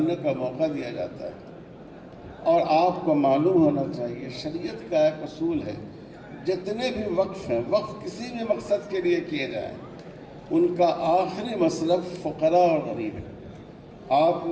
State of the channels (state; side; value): identical; both; correlation 1.00